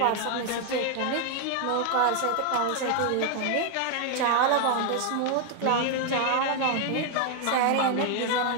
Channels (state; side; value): different; both; correlation 0.00